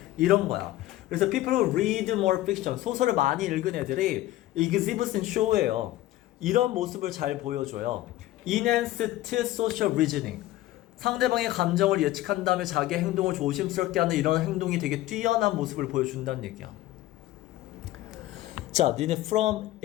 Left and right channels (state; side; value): quieter; right; 15.6 dB